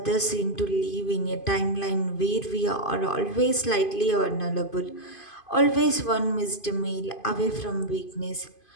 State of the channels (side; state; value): right; late; 2.5 ms